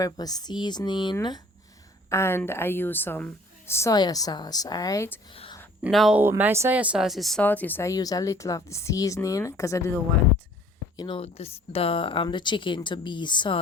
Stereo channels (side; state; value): both; normal; correlation 0.53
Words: seasoning, and I use some soya sauce. Alright. Now my soya sauce is salty, so I use a little of the seasoning because I didn't want, the chicken to be